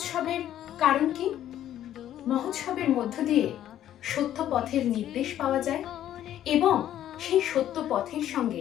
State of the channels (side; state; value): right; quieter; 11.7 dB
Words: কারণ কি? মহোৎসবের মধ্য দিয়ে সত্য পথের নির্দেশ পাওয়া যায় এবং সেই সত্য পথের